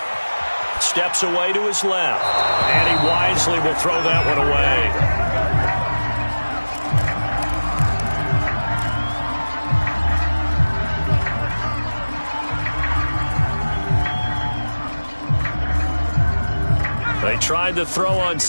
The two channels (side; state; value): both; inverted; correlation -1.00